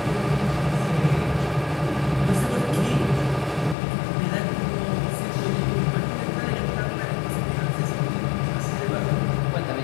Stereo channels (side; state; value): right; drops out; at 3.8 s